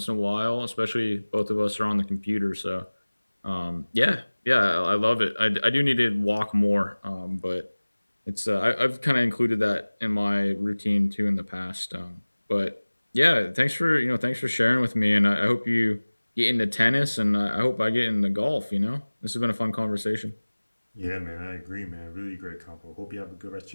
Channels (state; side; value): inverted; both; correlation -1.00